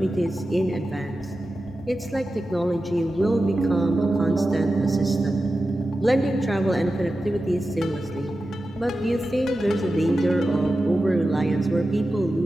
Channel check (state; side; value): normal; both; correlation 0.93